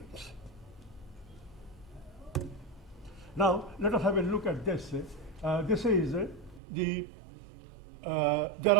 Now, let us have a look at this. This is there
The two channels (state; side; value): drops out; left; at 6.6 s